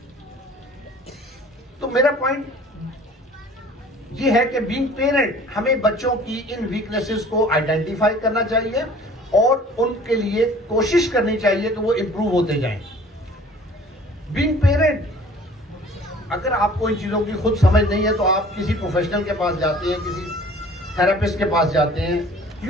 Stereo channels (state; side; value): normal; both; correlation 0.49